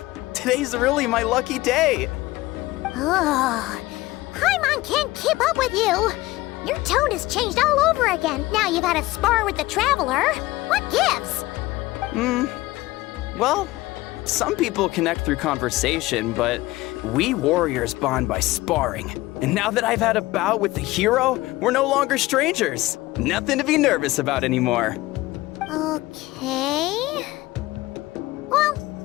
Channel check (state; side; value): quieter; right; 18.8 dB